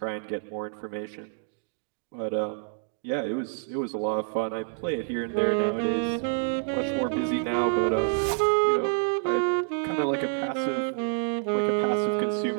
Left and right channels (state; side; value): silent; left; 60 dB below the other